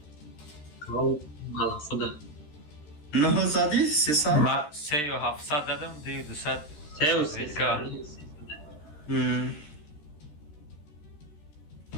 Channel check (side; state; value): right; late; 13 ms